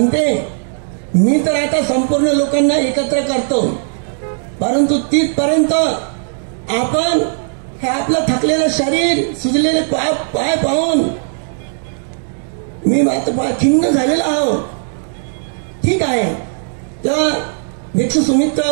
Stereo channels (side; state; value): left; silent; digital silence